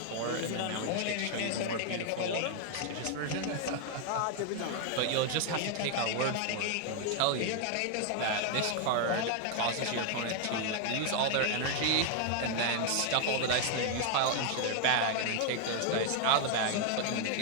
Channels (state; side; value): different; both; correlation 0.00